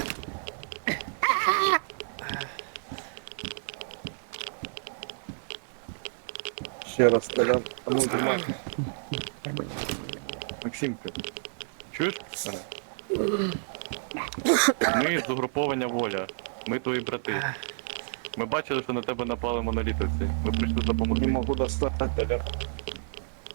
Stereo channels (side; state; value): left; silent; digital silence